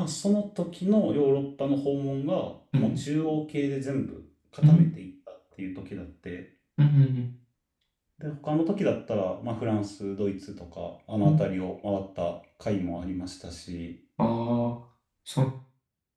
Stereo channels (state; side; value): identical; both; correlation 1.00